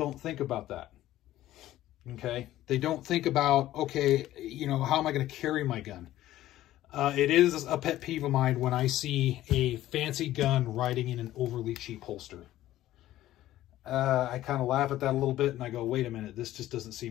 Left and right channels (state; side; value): quieter; right; 14.3 dB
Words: think about that. Okay? They don't think about, okay, you know, how am I going to carry my gun? It is a pet peeve of mine when I see a fancy gun riding in an overly cheap holster. I kind of laugh at that a little bit and I go, wait a minute, this just doesn't